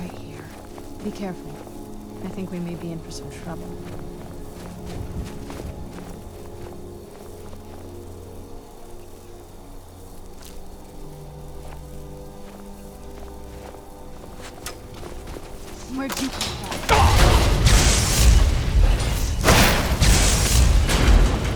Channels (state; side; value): identical; both; correlation 1.00